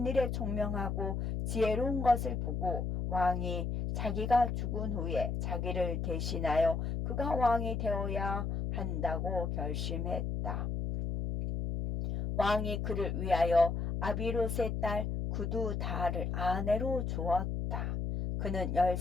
일에 총명하고 지혜로운 것을 보고 왕이 자기가 죽은 후에 자기를 대신하여 그가 왕이 되어야 한다고 결심했다. 왕이 그를 위하여 아비롯의 딸 구두다를 아내로 주었다. 그는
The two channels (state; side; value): noise; left; hum, 2 dB below the sound